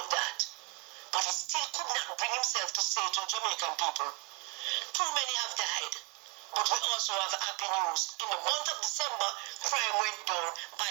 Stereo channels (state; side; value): quieter; left; 27.6 dB